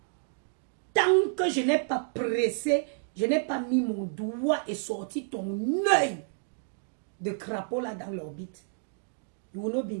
Tant que je n'ai pas pressé, je n'ai pas mis mon doigt et sorti ton œil de crapaud là dans l'orbite. You will not be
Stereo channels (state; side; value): silent; left; digital silence